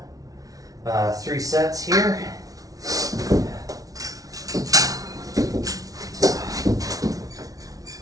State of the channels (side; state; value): left; late; 0.18 ms